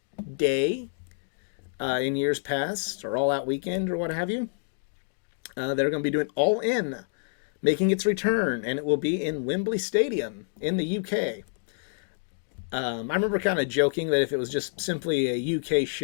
day in years past, or All Out weekend, or what have you. They're going to be doing All In, making its return, and it will be in Wembley Stadium in the UK. I remember kind of joking that if it was just simply a UK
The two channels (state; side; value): silent; right; digital silence